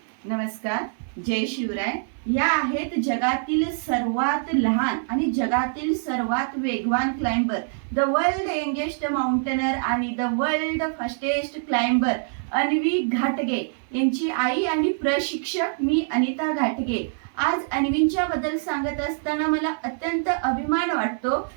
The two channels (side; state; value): left; silent; 62 dB below the other